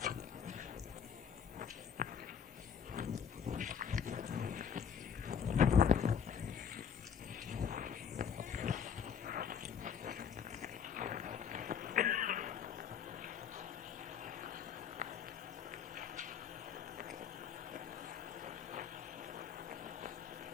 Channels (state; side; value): quieter; right; 7.4 dB